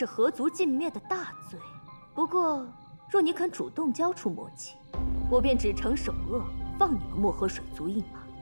何族尽灭的大罪？不过，若你肯主动交出魔器，我便只惩首恶，放你们漠河水族一马。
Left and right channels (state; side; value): inverted; both; correlation -1.00